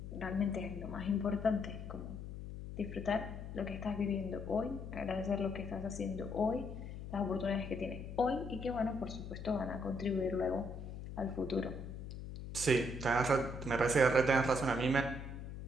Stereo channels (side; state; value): left; noise; hum, 9 dB below the sound